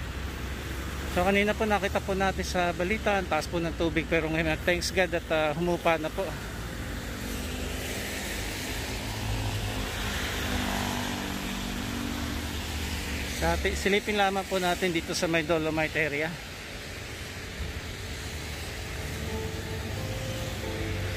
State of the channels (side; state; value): both; identical; correlation 1.00